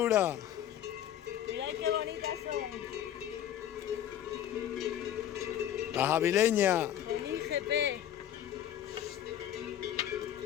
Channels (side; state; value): right; quieter; 11.0 dB